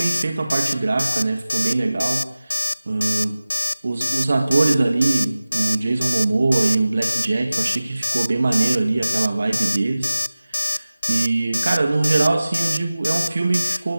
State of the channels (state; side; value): inverted; both; correlation -0.96